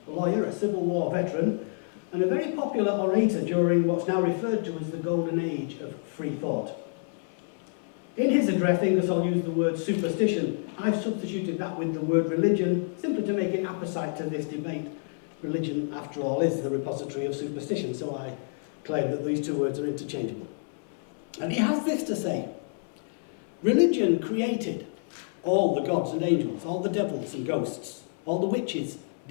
a lawyer, a Civil War veteran, and a very popular orator during what's now referred to as the golden age of free thought. In his address, Ingersoll used the word superstition. I've substituted that with the word religion, simply to make it apposite to this debate. Religion, after all, is the repository of superstition, so I claim that these two words are interchangeable. And he has this to say: religion created all the gods and angels, all the devils and ghosts, all the witches,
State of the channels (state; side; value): silent; right; 59 dB below the other